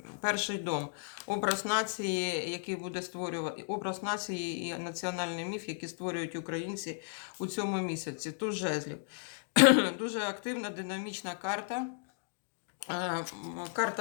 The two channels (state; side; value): silent; right; digital silence